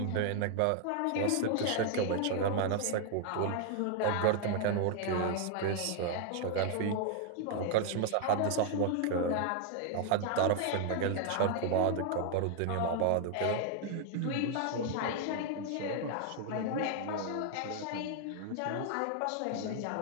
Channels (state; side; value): different; both; correlation 0.00